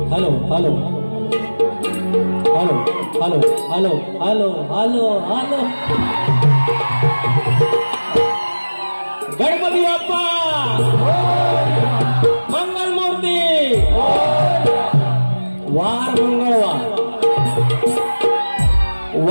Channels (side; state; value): both; inverted; correlation -1.00